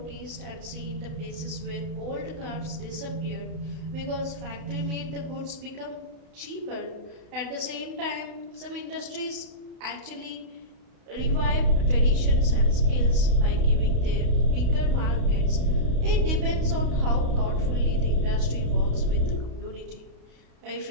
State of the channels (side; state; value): left; late; 32 ms